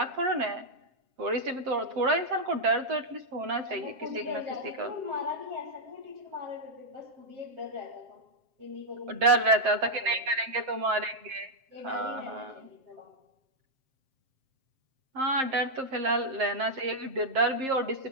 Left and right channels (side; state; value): left; late; 7.6 ms